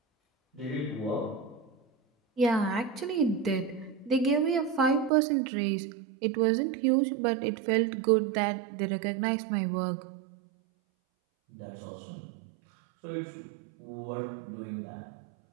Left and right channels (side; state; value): left; drops out; at 5.1 s